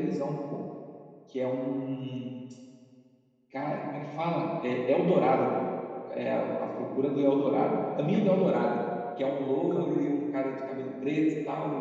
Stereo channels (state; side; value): identical; both; correlation 1.00